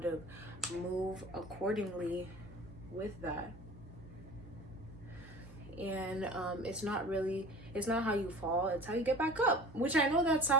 of move accordingly with that. And it's not how you fall, it's how you get back up, which I know that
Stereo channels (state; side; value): normal; both; correlation 0.41